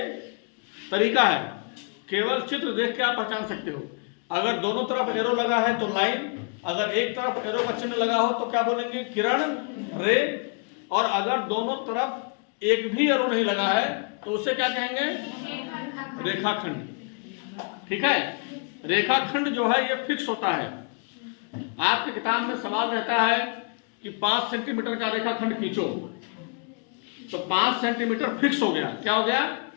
तरीका है, केवल चित्र देख के आप पहचान सकते हो। अगर दोनों तरफ एरो लगा है तो लाइन, अगर एक तरफ एरो का चिन्ह लगा हो तो क्या बोलेंगे? किरण, रे। और अगर दोनों तरफ एक भी एरो नहीं लगा है तो उसे क्या कहेंगे? रेखाखंड, ठीक है। रेखाखंड जो है ये फिक्स होता है। आपके किताब में सवाल रहता है कि 5 सेंटीमीटर का रेखाखंड खींचो, तो 5 सेंटीमीटर फिक्स हो गया। क्या हो गया?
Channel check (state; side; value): quieter; right; 38.0 dB